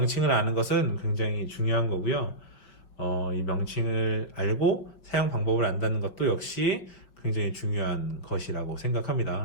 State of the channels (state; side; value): late; right; 5.5 ms